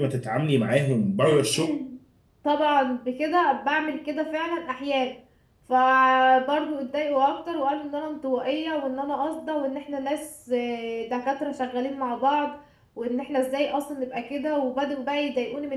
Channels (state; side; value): identical; both; correlation 1.00